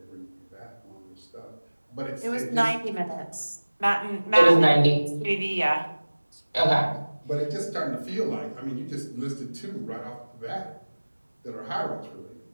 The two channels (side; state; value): both; inverted; correlation -1.00